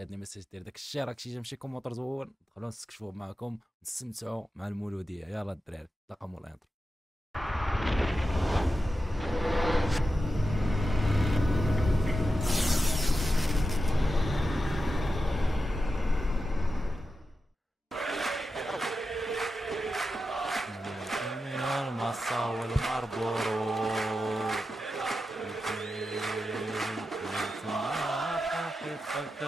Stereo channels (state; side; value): normal; both; correlation 0.90